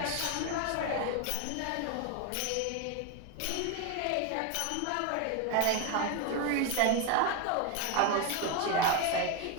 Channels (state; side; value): different; both; correlation 0.02